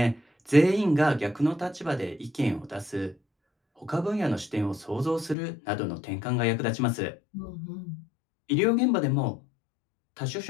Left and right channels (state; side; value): drops out; right; at 5.4 s